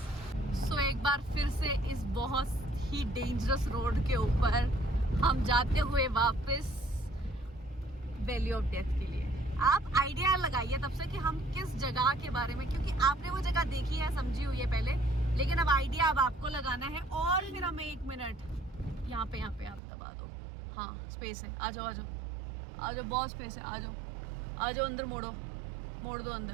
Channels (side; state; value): left; drops out; at 19.8 s